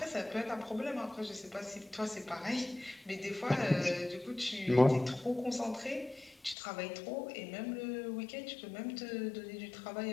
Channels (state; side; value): drops out; right; at 6.6 s